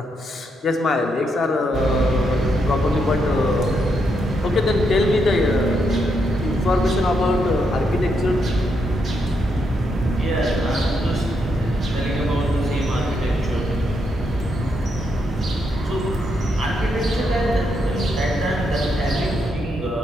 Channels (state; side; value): normal; both; correlation 0.79